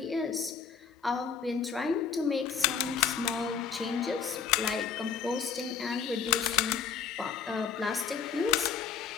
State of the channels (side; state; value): right; quieter; 6.7 dB